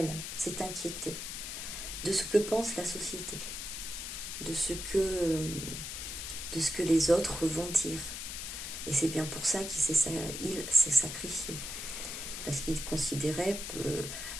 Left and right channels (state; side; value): noise; left; hiss, 6 dB below the sound